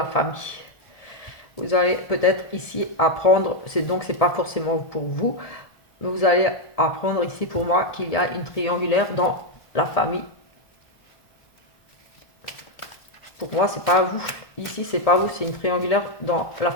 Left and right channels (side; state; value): right; late; 1.7 ms